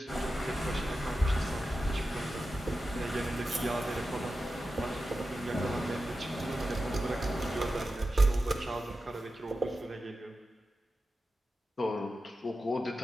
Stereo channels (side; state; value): both; normal; correlation 0.92